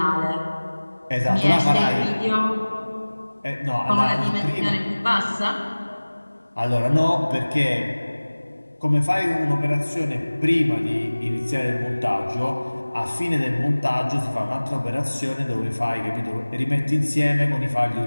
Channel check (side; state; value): both; inverted; correlation -1.00